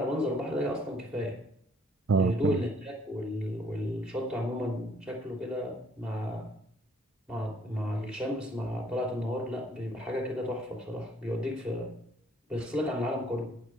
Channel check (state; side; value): normal; both; correlation 0.62